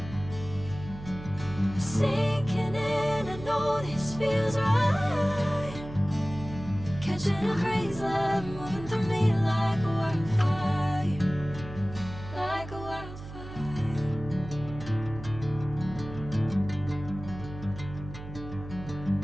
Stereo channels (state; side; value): noise; right; hum, 12 dB below the sound